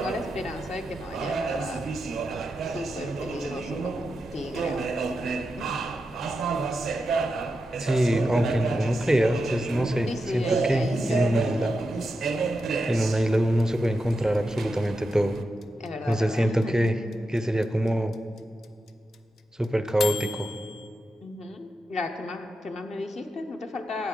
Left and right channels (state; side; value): normal; both; correlation 0.88